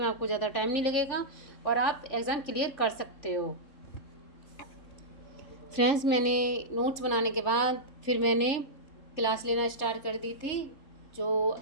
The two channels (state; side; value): late; right; 3.7 ms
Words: आपको ज़्यादा टाइम नहीं लगेगा और आप एग्ज़ाम क्लियर कर सकते हो। फ्रेंड्स, मैंने नोट्स बनाने के बाद फिर मैंने क्लास लेना स्टार्ट कर दी थी, जो